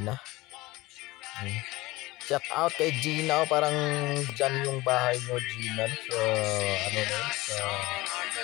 Shout out kay Gina, parang dyan yung bahay nyo Gina, so ano na yun,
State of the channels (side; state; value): right; quieter; 20.3 dB